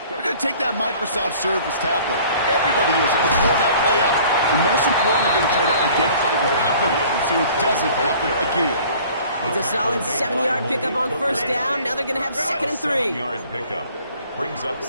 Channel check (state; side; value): inverted; both; correlation -0.51